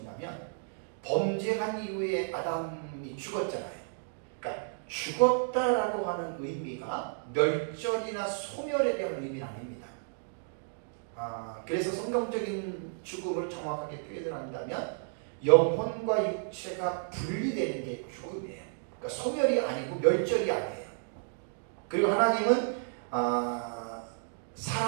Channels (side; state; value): left; silent; digital silence